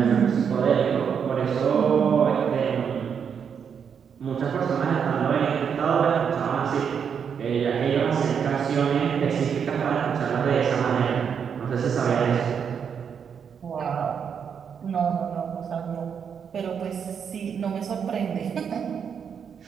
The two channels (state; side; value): quieter; left; 7.2 dB